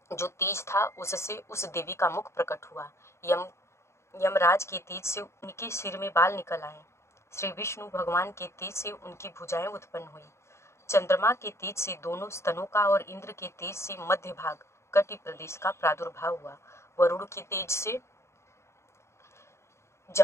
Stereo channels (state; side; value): late; right; 0.13 ms